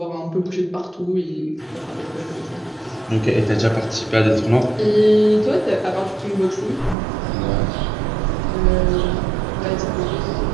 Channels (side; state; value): left; drops out; at 7.0 s